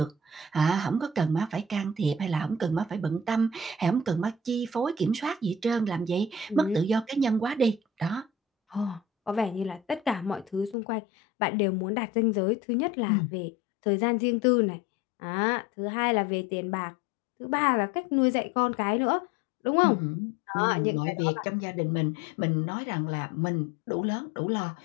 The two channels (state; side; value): drops out; right; at 10.8 s